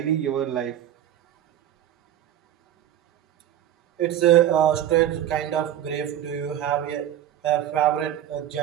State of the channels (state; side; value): quieter; left; 11.4 dB